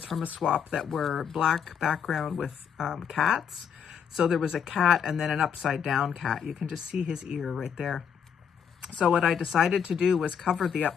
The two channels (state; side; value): quieter; right; 7.6 dB